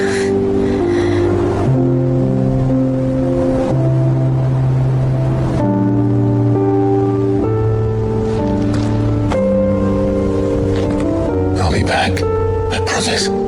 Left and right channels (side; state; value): both; identical; correlation 1.00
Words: I'll be back. I promise.